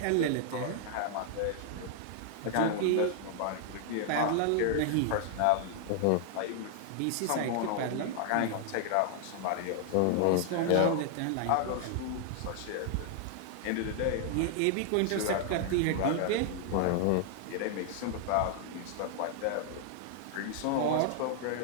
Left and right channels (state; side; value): different; both; correlation 0.00